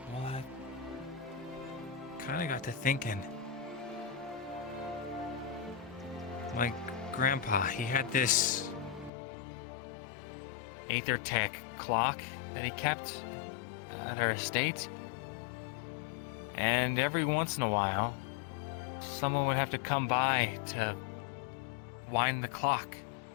Well, I kind of got to thinking. My grandpa, he had this Aether Tech clock that he kept at our estate. And every once in a while, someone would have to come by to wind the clock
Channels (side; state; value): right; drops out; at 9.1 s